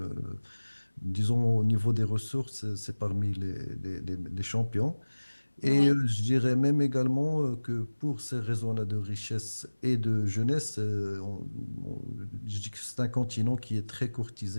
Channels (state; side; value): inverted; both; correlation -1.00